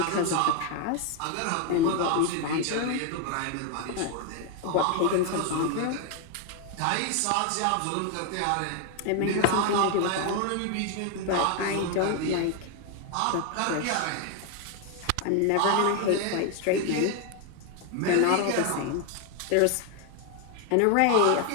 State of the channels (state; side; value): different; both; correlation 0.01